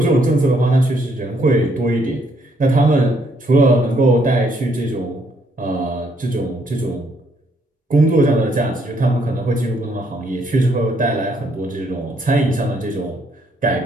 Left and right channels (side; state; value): both; normal; correlation 0.70